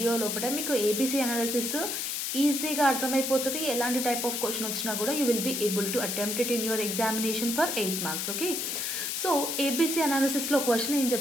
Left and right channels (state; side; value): noise; left; hiss, 2 dB below the sound